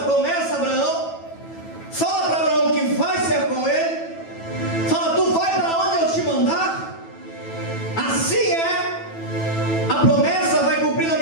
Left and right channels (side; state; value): right; late; 9.1 ms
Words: promessa a Abraão, fala para Abraão que vai ser com ele, fala, tu vai para onde eu te mandar. Assim é, a promessa vai cumprir na